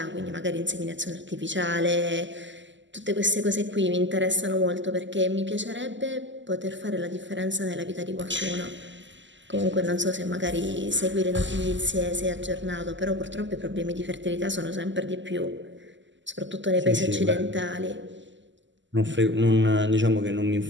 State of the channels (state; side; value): late; left; 0.54 ms